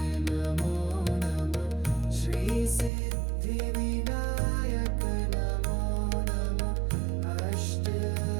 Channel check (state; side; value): drops out; left; at 2.9 s